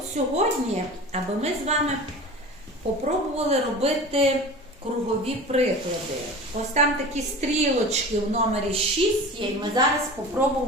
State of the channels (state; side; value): normal; both; correlation 0.36